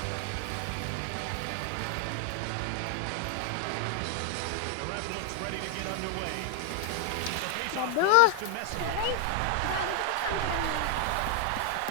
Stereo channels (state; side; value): different; both; correlation 0.00